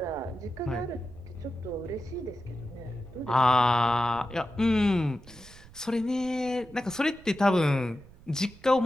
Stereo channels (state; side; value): noise; right; rumble, 21 dB below the sound